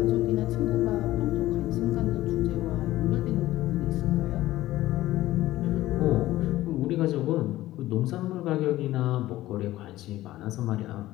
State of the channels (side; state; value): right; quieter; 15.8 dB